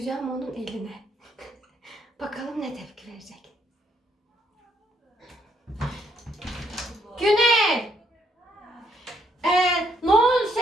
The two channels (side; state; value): both; normal; correlation 0.71